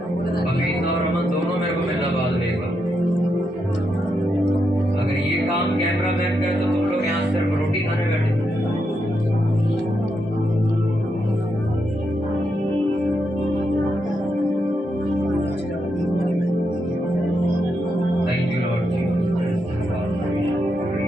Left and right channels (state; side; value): normal; both; correlation 0.82